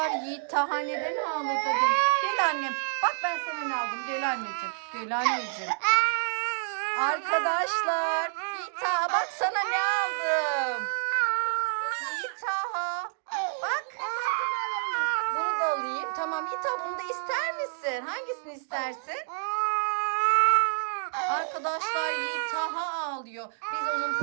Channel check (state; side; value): silent; left; digital silence